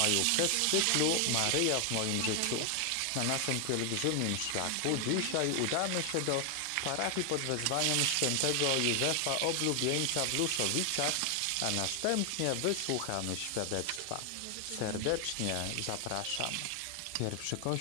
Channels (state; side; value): different; both; correlation 0.00